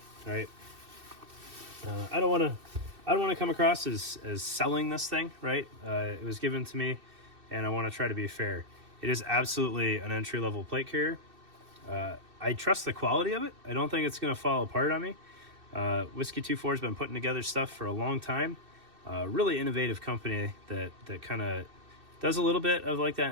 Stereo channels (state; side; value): late; left; 2.6 ms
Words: right? I don't want to come across as selling this thing, right? It was given to me, and I want to try to be fair. It is absolutely an entry-level plate carrier. I trust the quality of it. I don't think it's going to fall apart on me. Whiskey 24 has been putting together stuff for a long time. Really innovative company that kind of does a little bit of like that